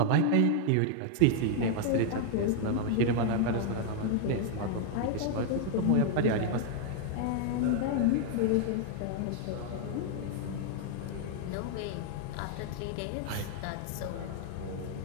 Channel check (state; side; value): different; both; correlation 0.00